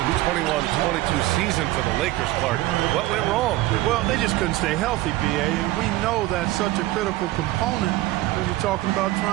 season for the Lakers, Clark. What went wrong? Well, they just couldn't stay healthy, B.A., and we know that's such a critical component when you're talking about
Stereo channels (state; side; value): quieter; left; 17.2 dB